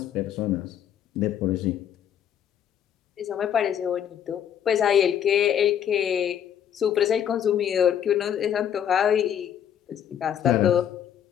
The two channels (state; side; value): quieter; right; 9.4 dB